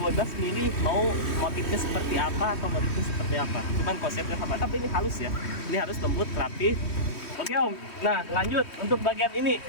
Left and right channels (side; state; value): right; late; 3.1 ms